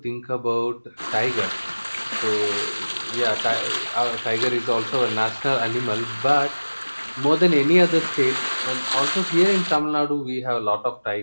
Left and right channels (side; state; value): both; inverted; correlation -1.00